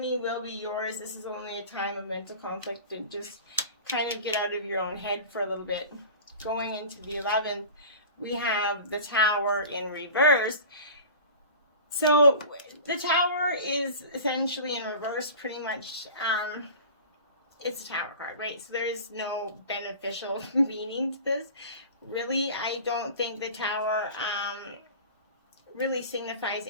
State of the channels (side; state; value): both; inverted; correlation -0.38